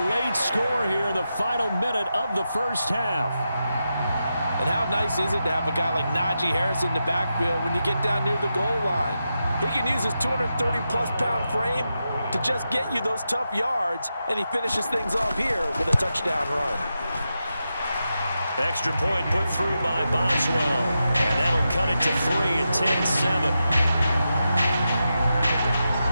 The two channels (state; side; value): inverted; both; correlation -0.88